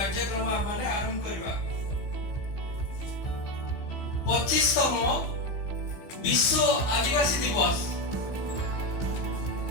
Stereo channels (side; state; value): right; late; 15 ms